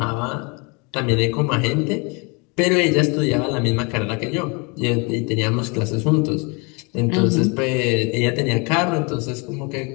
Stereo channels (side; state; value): right; quieter; 30.8 dB